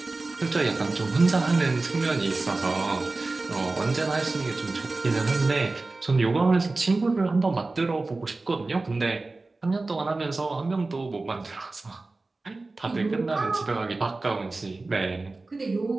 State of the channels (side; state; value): left; quieter; 3.4 dB